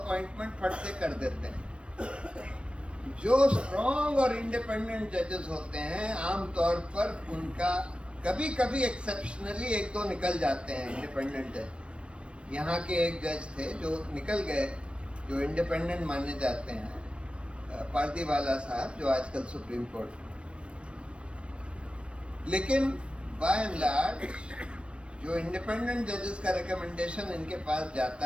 फट से कर देते हैं। जो स्ट्रॉन्ग और इंडिपेंडेंट जजेस होते हैं आमतौर पर उनका कभी कभी एक्सेप्शनली 1-2 निकल जाते हैं इंडिपेंडेंट जज। यहाँ के एक जज थे जो निकल गए, जो इंडिपेंडेंट माने जाते हैं, पारदीवाला साहब, जो आजकल सुप्रीम कोर्ट। लेकिन बाय एंड लार्ज जो इंडिपेंडेंट जजेस का रिकमेंडेशन इनके पास जाता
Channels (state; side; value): late; left; 0.059 ms